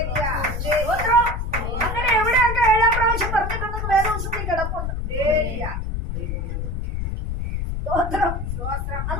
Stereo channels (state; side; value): noise; left; rumble, 3 dB below the sound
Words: അങ്ങനെ എവിടെയൊക്കെ 7ാം പ്രാവശ്യം പറഞ്ഞിട്ടുണ്ടെന്ന് വേദോത്സവത്തിൽ കിടപ്പുണ്ട്.